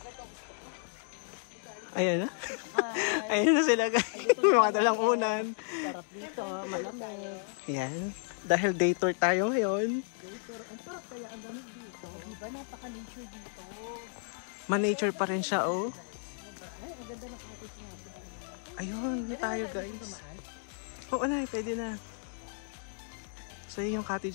Ayun na. Ayun na sila guys. May mga dalang unan. Sarap dito. Malamig. Yan. Dahil day tour tayo ngayon. Dito. Ang sarap kaya ang gamit dito. Diba napaka-nature dito. Ma-nature pa rin siya, oh. Ay, ang ganda ng cottage nga. Ayun, yun tayo guys. Oo na, pwede na. So yun yung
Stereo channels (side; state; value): right; silent; 56 dB below the other